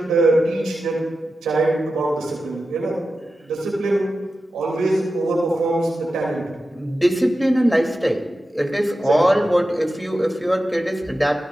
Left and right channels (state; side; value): normal; both; correlation 0.92